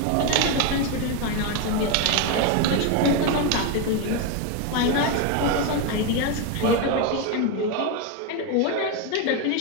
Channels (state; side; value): different; both; correlation 0.02